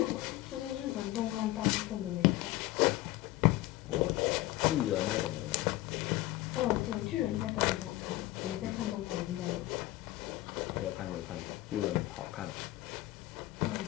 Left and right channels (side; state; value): right; quieter; 17.5 dB